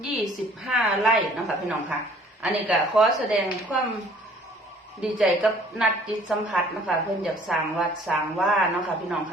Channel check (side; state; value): both; normal; correlation 0.55